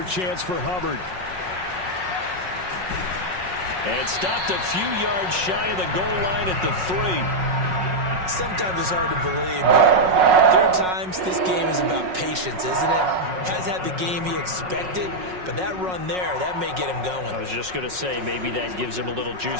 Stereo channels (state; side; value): late; left; 5.4 ms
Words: chance for Hubbard. And stopped a few yards shy of the goal line at the 3. Sometimes it's hard to believe, but there are times this game is about patience, isn't it? Has had the game he expected, but that run there, that may get him going. I was just going to say, maybe that gives him a little juice,